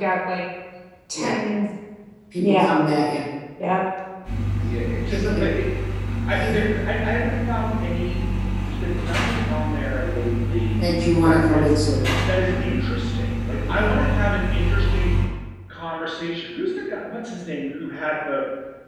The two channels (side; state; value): both; identical; correlation 1.00